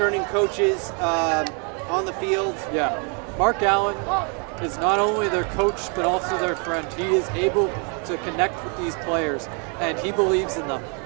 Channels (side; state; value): left; quieter; 37.0 dB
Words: coaches on the field. Yeah, Mark Allen is not only their coach, but also their friend. He is able to connect with these players, and he believes in them.